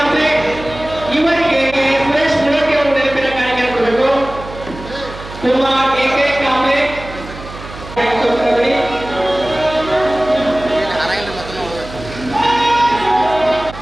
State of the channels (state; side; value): noise; right; hum, 14 dB below the sound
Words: ಇವರಿಗೆ ಸುರೇಶ್ ಮುಳೋಟಿ ಅವರು ನೆನಪಿನ ಕಾರ್ಯಕ್ರಮ ಕೊಡಬೇಕು. ಕುಮಾರ್ ಎಕೆ ಕಾಂಬ್ಳೆ